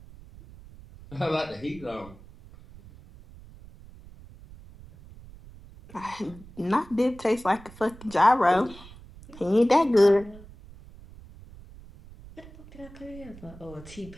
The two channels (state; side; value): noise; right; rumble, 20 dB below the sound